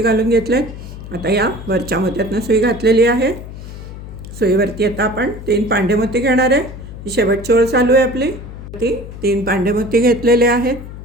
घालून घेतलेत. आता या वरच्या मोत्यातनं सुई घातलेली आहे. सुईवरती आता आपण 3 पांढरे मोती घेणार आहे. ही शेवटची ओळ चालू आहे आपली. ती 3 पांडेमोती घेतलेले आहेत.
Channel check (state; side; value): noise; left; hum, 12 dB below the sound